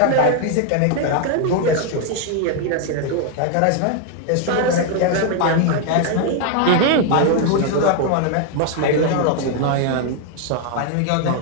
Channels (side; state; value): both; different; correlation 0.01